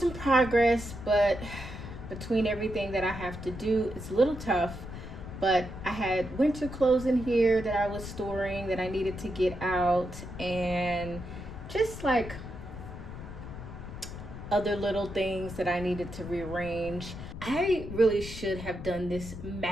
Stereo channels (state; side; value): noise; left; rumble, 10 dB below the sound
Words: progress, but between everything that I have to do, it's a little tough. But I had winter clothes in here that I was storing that I needed to get out, and just like other little things that I needed to rearrange. I really should have done this